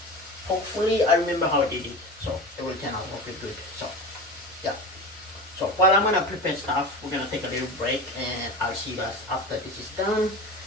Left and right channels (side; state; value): both; normal; correlation 0.29